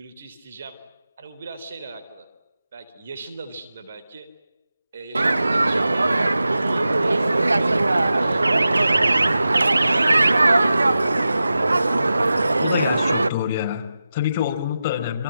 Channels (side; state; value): both; inverted; correlation -0.92